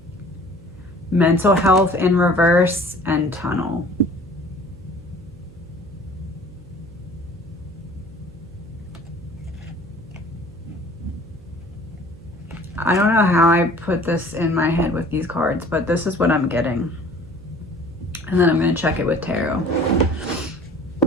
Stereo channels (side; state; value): right; noise; hum, 22 dB below the sound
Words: mental health in reverse, and tunnel. I don't know how I put this in my head with these cards, but this is what I'm getting. And then I'm going to check it with tarot.